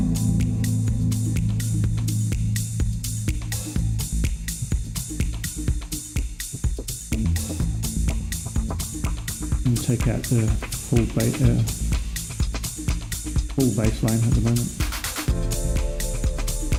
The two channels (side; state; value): both; identical; correlation 1.00